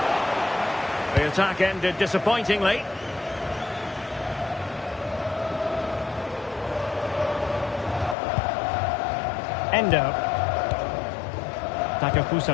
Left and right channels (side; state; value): right; drops out; at 8.2 s